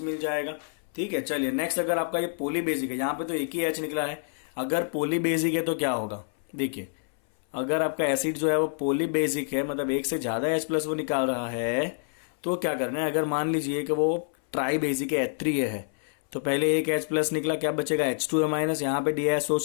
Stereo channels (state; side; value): silent; right; 60 dB below the other